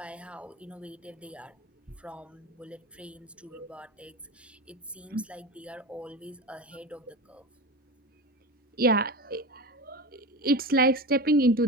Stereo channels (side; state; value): both; normal; correlation 0.26